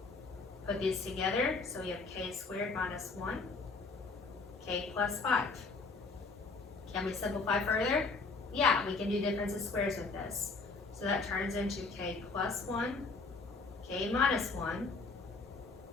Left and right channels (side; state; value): right; quieter; 4.1 dB